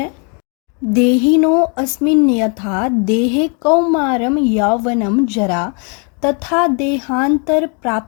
देहिनो अस्मिन् यथा देहे कौमारं यौवनं जरा तथा देहांतर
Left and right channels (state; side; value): quieter; right; 36.8 dB